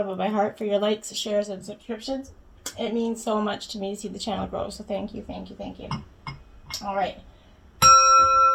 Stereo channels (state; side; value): identical; both; correlation 1.00